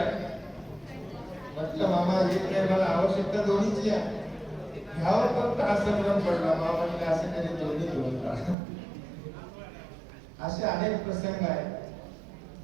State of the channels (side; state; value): left; drops out; at 8.6 s